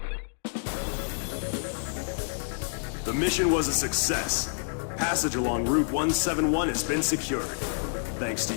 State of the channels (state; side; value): silent; right; digital silence